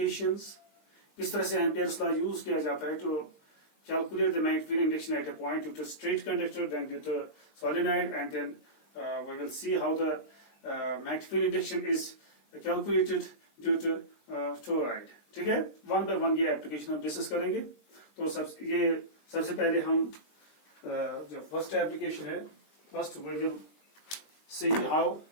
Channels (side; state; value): right; late; 20 ms